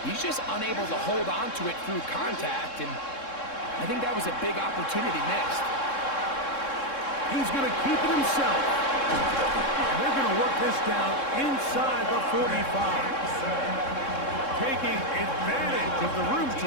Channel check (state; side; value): late; right; 3.7 ms